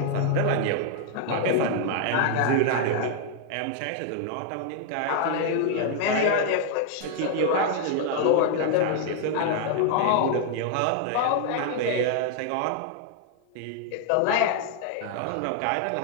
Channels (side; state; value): both; different; correlation 0.00